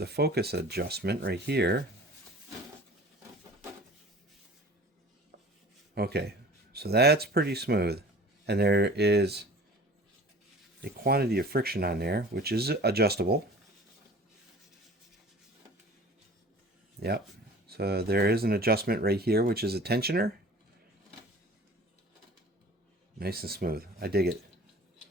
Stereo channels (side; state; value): both; normal; correlation 0.44